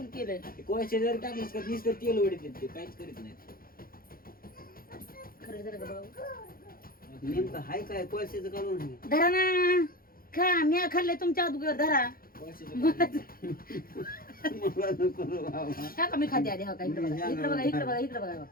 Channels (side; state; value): right; late; 0.42 ms